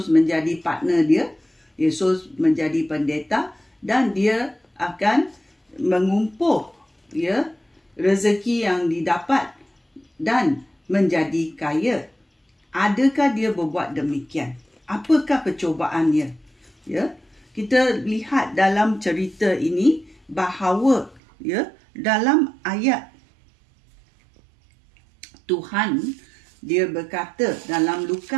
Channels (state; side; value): drops out; left; at 21.2 s